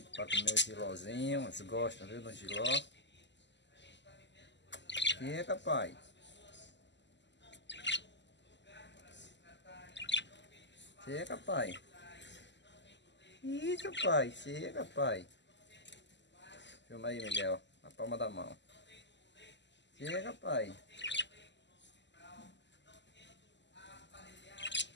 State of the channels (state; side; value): late; right; 0.52 ms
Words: pra comer o gilózinho. Eles gostam, viu, do giló. Chega, pai. Chega, pai. Isso, pai. Chega, pai. Filma aí, Miguel. Na palma da mão. Chega, pai.